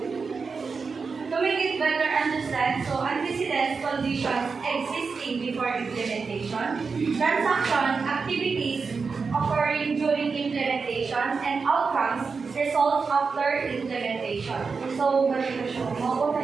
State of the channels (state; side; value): quieter; left; 4.9 dB